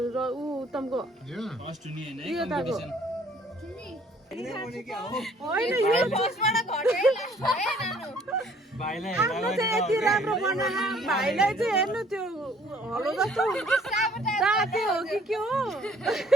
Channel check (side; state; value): both; normal; correlation 0.58